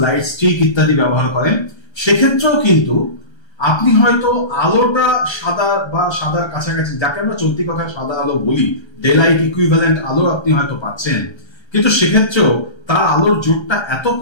লাইট স্টিক ইত্যাদি ব্যবহার করেন। সেক্ষেত্রেও কিন্তু আপনি হয়তো আলোটা সাদা বা সাদার কাছাকাছি, যাকে আমরা চলতি কথায় সাদা আলো বলি, ডে লাইট ইকুইভ্যালেন্ট আলো আপনি হয়তো পাচ্ছেন, কিন্তু সেক্ষেত্রেও তার আলোর জোরটা এত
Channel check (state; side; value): late; right; 1.3 ms